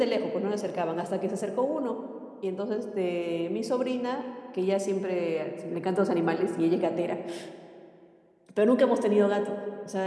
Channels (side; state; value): both; identical; correlation 1.00